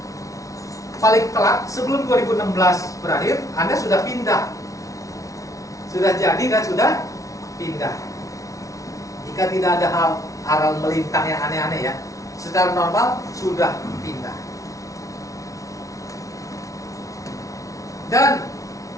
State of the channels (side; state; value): right; late; 0.16 ms